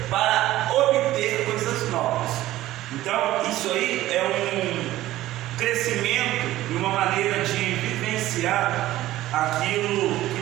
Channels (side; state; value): left; quieter; 15.4 dB